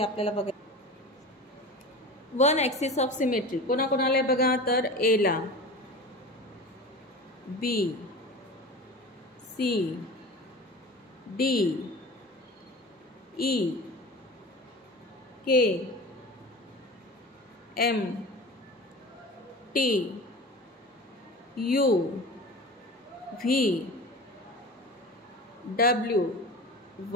आपल्याला बघा. वन ॲक्सिस ऑफ सिमेट्री कोणाकोणाला आहे बघा, तर एला, B, C, D, E, K, M, T, U, V, W,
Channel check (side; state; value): both; normal; correlation 0.33